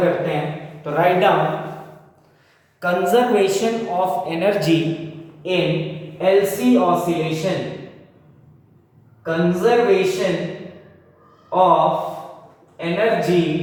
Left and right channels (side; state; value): both; identical; correlation 1.00